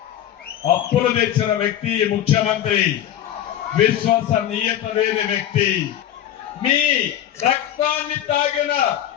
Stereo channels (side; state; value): right; quieter; 11.2 dB